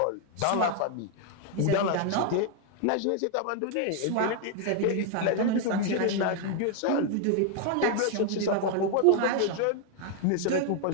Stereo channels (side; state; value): both; different; correlation 0.00